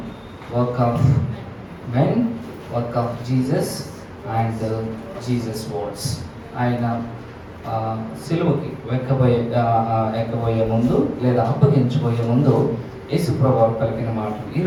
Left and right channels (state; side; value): identical; both; correlation 1.00